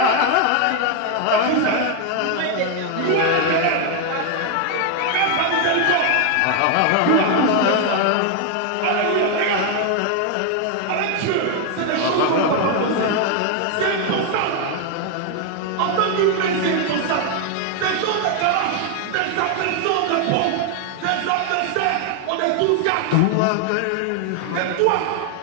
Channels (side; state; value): both; different; correlation 0.01